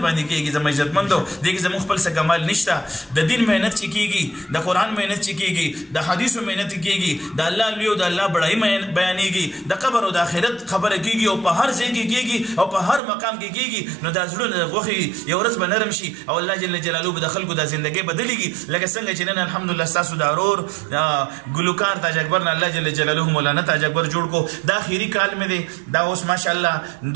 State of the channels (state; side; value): drops out; left; at 13.0 s